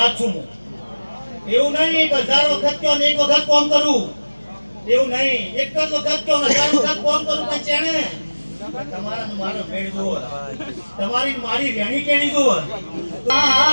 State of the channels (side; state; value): both; inverted; correlation -1.00